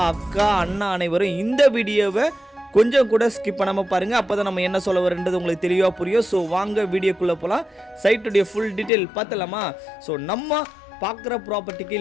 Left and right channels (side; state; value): right; drops out; at 8.9 s